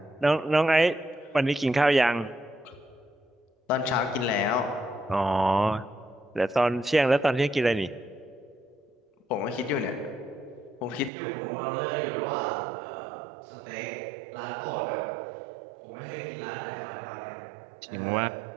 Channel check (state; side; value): drops out; left; at 11.1 s